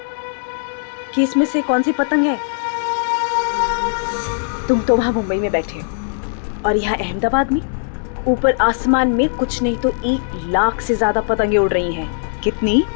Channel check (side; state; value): right; silent; digital silence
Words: कि इसमें से कौन सी पतंग है? तुम तो वहां मुंबई में बैठे हो और यहाँ अहमदाबाद में ऊपर आसमान में कुछ नहीं तो 1 लाख से ज्यादा पतंगे उड़ रही हैं। कितनी?